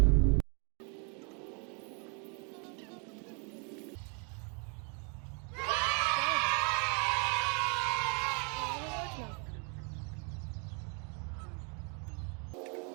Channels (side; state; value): left; quieter; 36.6 dB